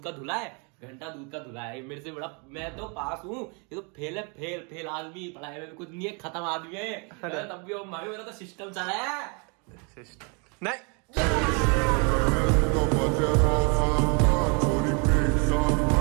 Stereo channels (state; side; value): quieter; left; 34.2 dB